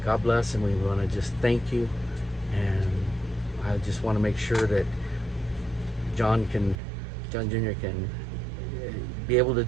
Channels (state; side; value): drops out; left; at 6.8 s